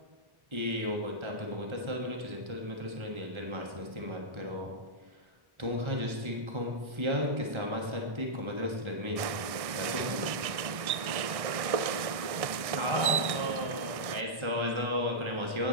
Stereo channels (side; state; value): left; late; 1.6 ms